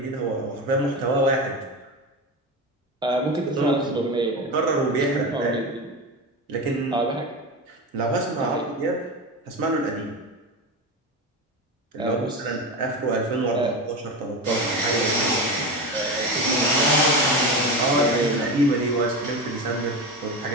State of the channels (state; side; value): normal; both; correlation 0.22